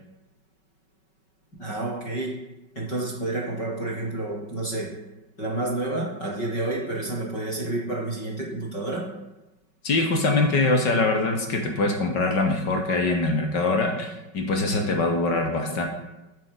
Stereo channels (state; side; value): late; right; 5.3 ms